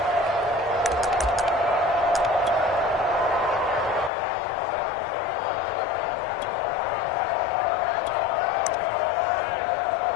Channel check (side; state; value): right; drops out; at 4.1 s